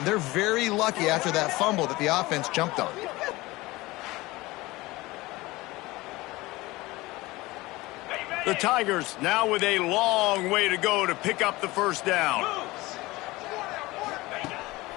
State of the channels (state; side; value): quieter; right; 20.4 dB